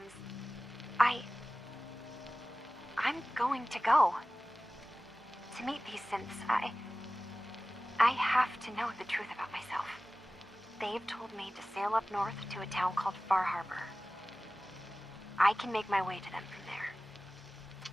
I'm going to go to meet these synths. I have to know the truth about myself. They've told me to sail up north to a town called Far Harbor. I can make my way to them from there.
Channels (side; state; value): both; normal; correlation 0.97